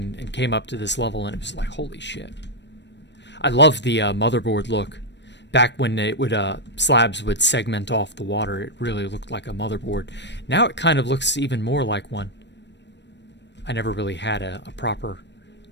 came up to this level, and it was like, holy shit. I love the motherboard look. Back when it would slabs would segment off the water, it really looked like a motherboard. Now it kind of looks even more like one. I never really had a proper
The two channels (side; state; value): right; late; 0.51 ms